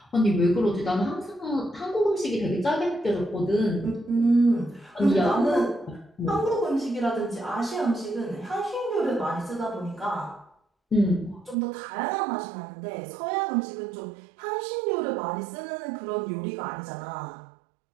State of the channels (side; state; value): left; drops out; at 11.6 s